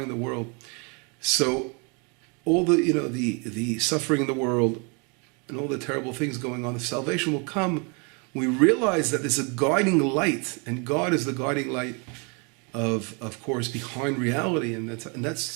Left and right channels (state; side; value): quieter; left; 33.5 dB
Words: the world. So all the suffering in the world and all the terrible things going on, the salvation will come. We realize that there's a guiding light, and God is the guiding light of course, behind reality, and